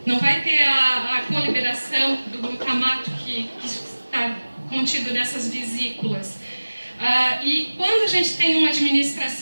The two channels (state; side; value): inverted; both; correlation -1.00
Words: não vai ter a coliberação do glutamato que está contido nessas vesículas. E quando a gente tem uma